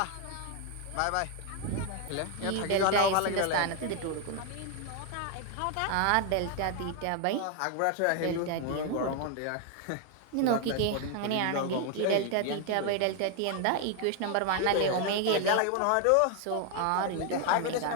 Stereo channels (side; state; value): both; different; correlation 0.01